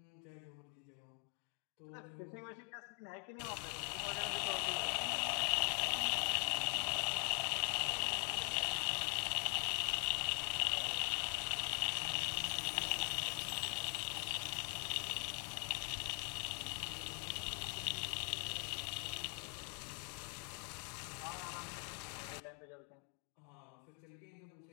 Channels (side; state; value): right; quieter; 35.7 dB